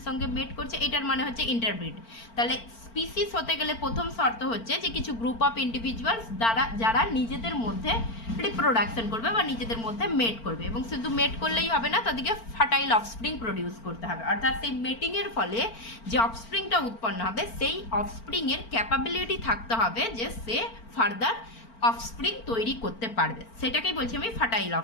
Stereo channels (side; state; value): right; late; 4.4 ms